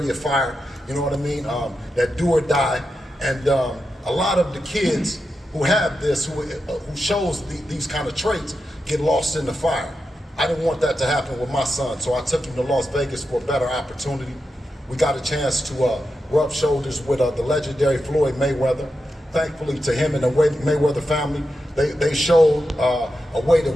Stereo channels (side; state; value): both; normal; correlation 0.89